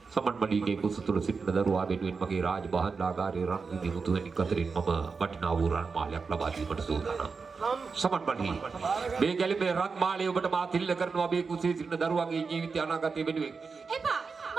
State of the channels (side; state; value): left; quieter; 4.9 dB